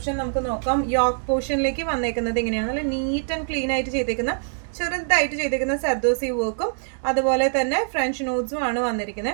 നമുക്ക് നോക്കാം. യോക്ക് പോർഷനിലേക്ക് വന്നേക്കുന്നത് ഇങ്ങനെയാണ്. നല്ല നീറ്റ് ആൻഡ് ക്ലീൻ ആയിട്ട് ചെയ്തേക്കുന്ന ചെറുതായിട്ട് ചെയ്തേക്കുന്ന സർദോസി വർക്കും അതുപോലെ തന്നെ ഫ്രഞ്ച് നോട്ട്സും ആണ്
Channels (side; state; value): left; silent; digital silence